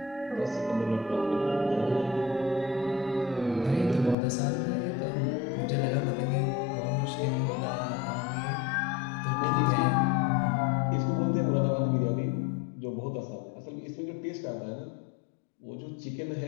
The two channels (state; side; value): drops out; right; at 4.2 s